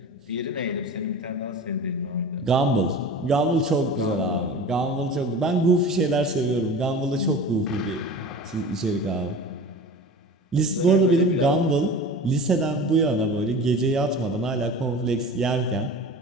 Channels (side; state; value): both; normal; correlation 0.36